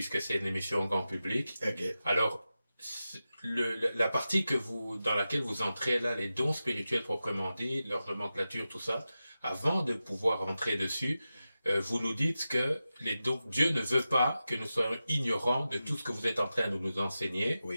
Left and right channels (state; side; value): inverted; both; correlation -0.93